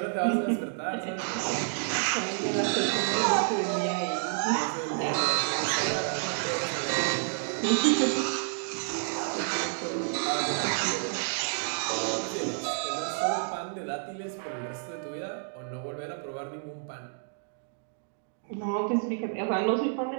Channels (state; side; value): silent; left; digital silence